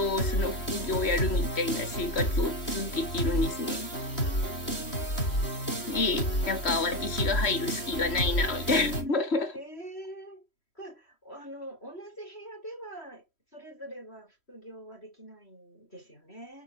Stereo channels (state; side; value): late; right; 3.1 ms